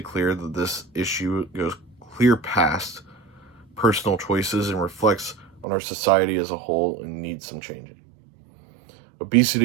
that this issue goes clear past personal choices and reflects on our society as a whole and needs some changing.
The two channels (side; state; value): left; drops out; at 5.7 s